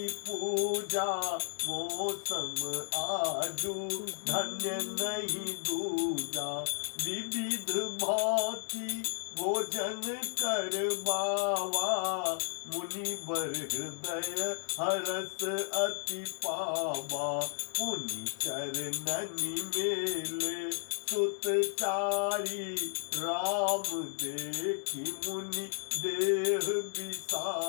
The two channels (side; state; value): right; silent; digital silence